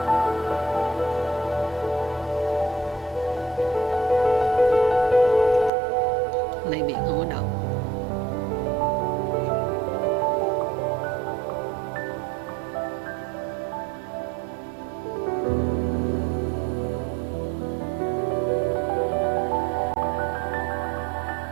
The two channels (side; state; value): left; drops out; at 5.7 s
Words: Này biển không có động.